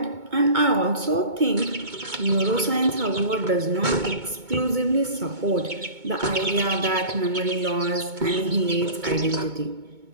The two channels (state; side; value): late; left; 2.2 ms